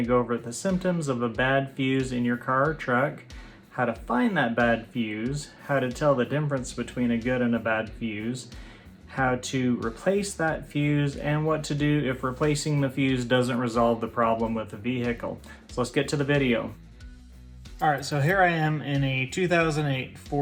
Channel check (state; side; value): identical; both; correlation 1.00